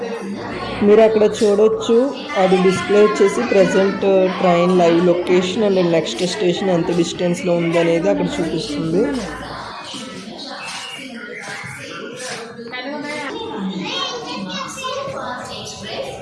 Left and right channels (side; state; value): both; identical; correlation 1.00